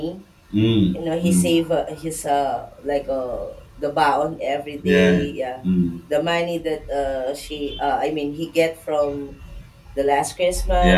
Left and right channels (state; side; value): identical; both; correlation 1.00